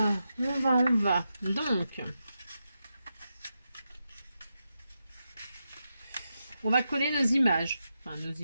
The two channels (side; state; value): both; inverted; correlation -0.87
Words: on va. Donc, on va coller nos images. Enfin, nos